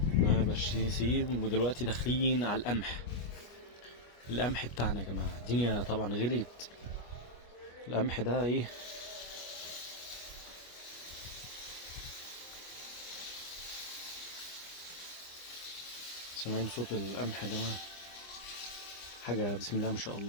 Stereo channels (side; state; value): right; late; 25 ms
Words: ده برسيم. ودلوقتي داخلين على القمح بتاعنا يا جماعه. الدنيا طبعا غليت. القمح ده ايه، سامعين صوت القمح يا جماعه؟ حاجه بسم الله ما شاء